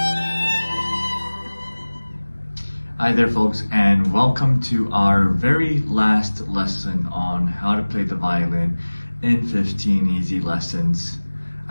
Hi there folks, and welcome to our very last lesson on how to play the violin in 15 easy lessons.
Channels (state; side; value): inverted; both; correlation -1.00